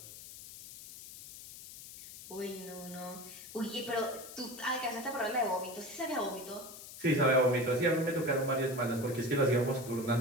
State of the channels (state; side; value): noise; left; hiss, 14 dB below the sound